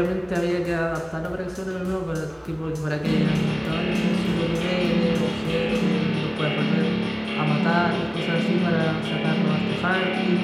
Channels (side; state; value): both; identical; correlation 1.00